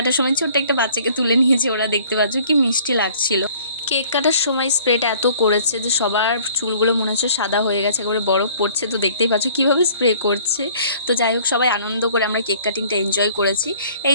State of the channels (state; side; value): inverted; both; correlation -0.54